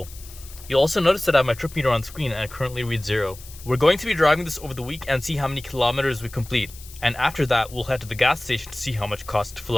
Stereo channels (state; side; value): noise; left; hiss, 18 dB below the sound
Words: You'll also notice that I have my trip meter on screen and it currently reads 0. We're going to be driving this over the week and see how many kilometers we complete. And after that, we'll head to the gas station to see how much it costs to fill